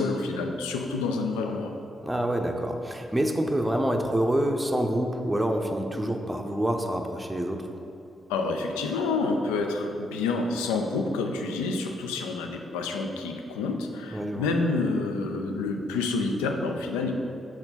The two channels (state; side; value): normal; both; correlation 0.72